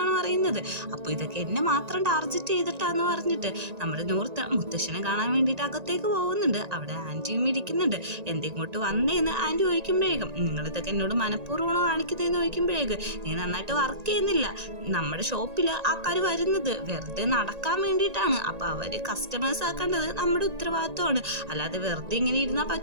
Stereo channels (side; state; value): left; late; 1.9 ms